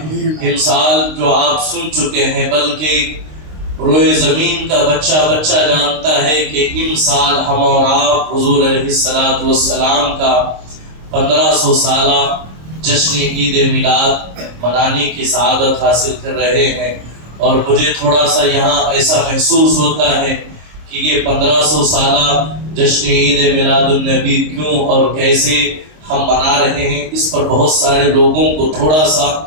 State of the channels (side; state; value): left; late; 26 ms